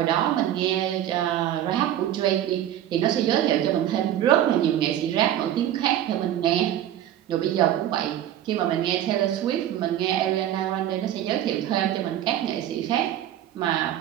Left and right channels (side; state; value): left; quieter; 11.7 dB